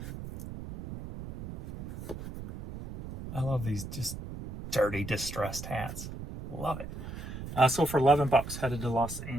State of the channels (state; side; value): noise; right; rumble, 9 dB below the sound